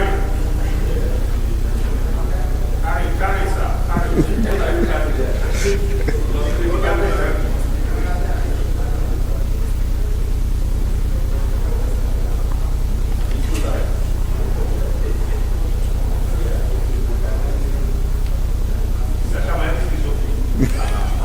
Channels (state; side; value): identical; both; correlation 1.00